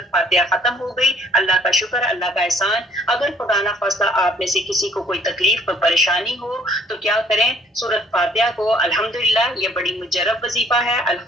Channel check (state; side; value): normal; both; correlation 0.60